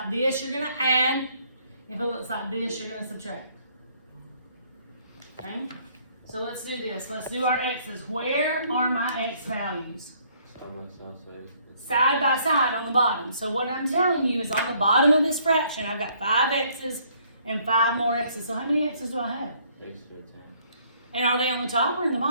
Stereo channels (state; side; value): inverted; both; correlation -0.64